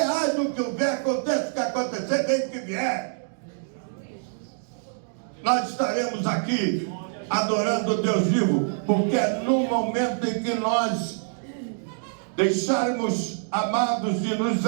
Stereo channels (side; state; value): left; silent; digital silence